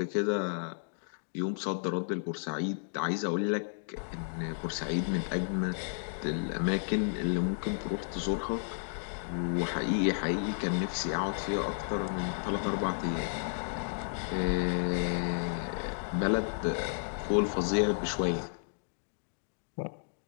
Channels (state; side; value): silent; right; digital silence